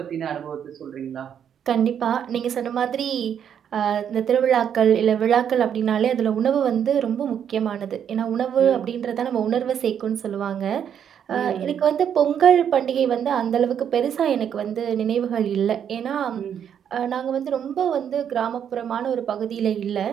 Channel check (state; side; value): quieter; left; 8.7 dB